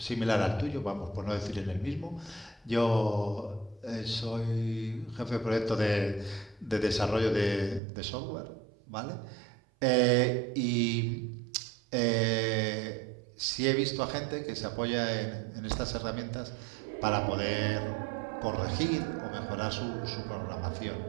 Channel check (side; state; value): left; drops out; at 7.8 s